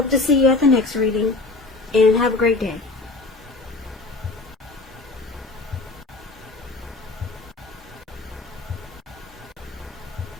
to see you at the next reading, and have a great day.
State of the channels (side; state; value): right; quieter; 3.4 dB